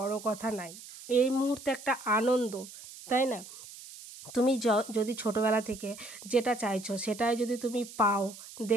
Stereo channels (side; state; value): right; noise; hiss, 16 dB below the sound